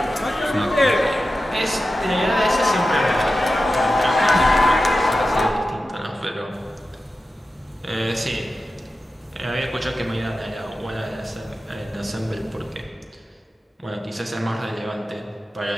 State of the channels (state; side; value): normal; both; correlation 0.92